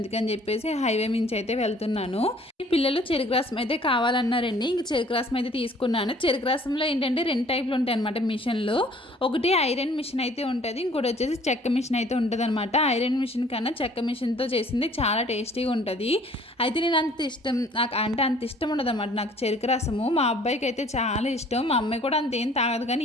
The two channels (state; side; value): normal; both; correlation 0.55